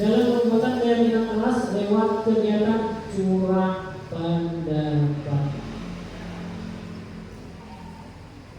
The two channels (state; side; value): identical; both; correlation 1.00